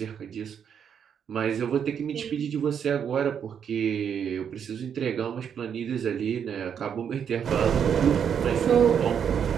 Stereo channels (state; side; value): quieter; left; 7.9 dB